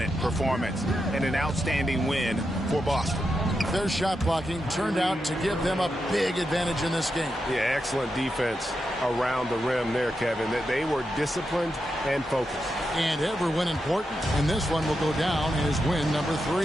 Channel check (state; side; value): normal; both; correlation 0.86